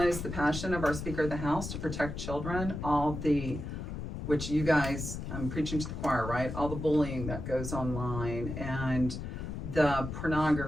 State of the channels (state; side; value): noise; left; rumble, 6 dB below the sound